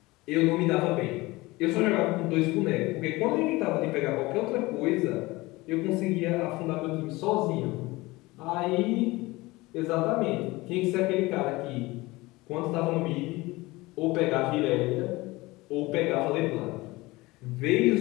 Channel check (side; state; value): right; quieter; 21.2 dB